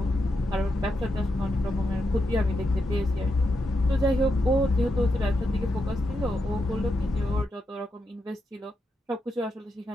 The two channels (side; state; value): both; normal; correlation 0.84